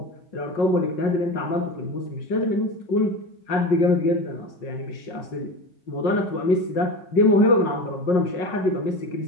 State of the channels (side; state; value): right; late; 5.5 ms